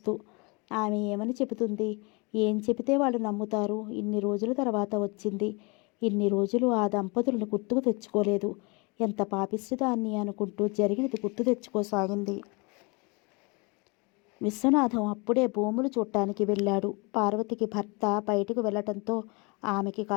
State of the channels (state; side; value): quieter; right; 29.3 dB